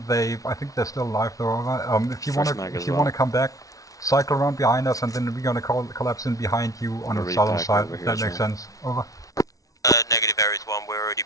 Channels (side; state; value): right; late; 0.17 ms